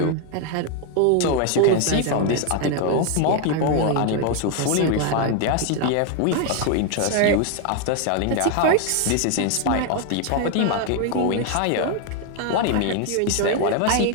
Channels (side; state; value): both; different; correlation 0.01